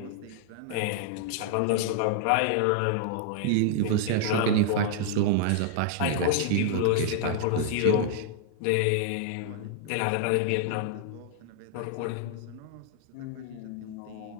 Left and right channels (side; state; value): both; different; correlation -0.01